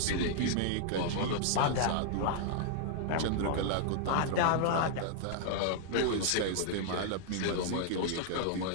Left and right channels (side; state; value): both; different; correlation -0.01